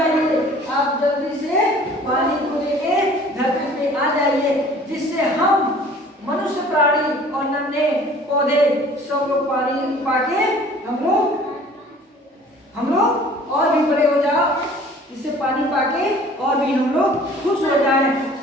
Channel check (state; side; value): normal; both; correlation 0.50